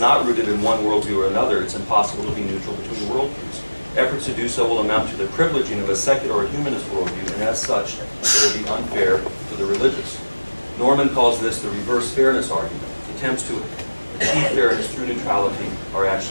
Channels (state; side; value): inverted; both; correlation -1.00